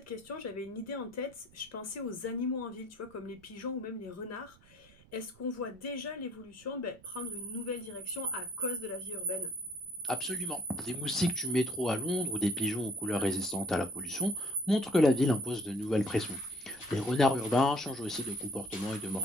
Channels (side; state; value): right; noise; rumble, 26 dB below the sound